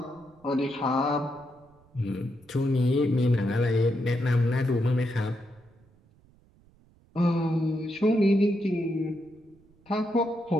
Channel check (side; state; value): right; noise; rumble, 30 dB below the sound